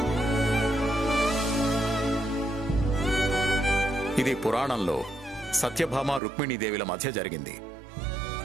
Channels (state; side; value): drops out; left; at 6.2 s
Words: ఇది పురాణంలో సత్యభామ రుక్మిణీదేవిల మధ్య జరిగింది.